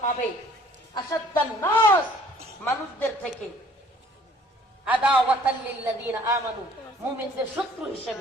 পাবে আসাদ্দান নাস, মানুষদের থেকে আদাওয়াতাল লিল্লাযিনা আমানু, মুমিনদের শত্রু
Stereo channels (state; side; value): normal; both; correlation 0.56